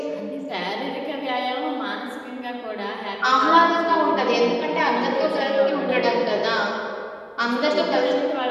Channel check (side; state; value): both; identical; correlation 1.00